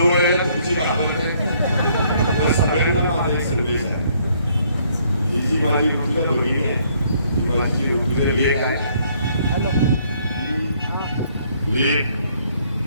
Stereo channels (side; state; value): both; inverted; correlation -0.66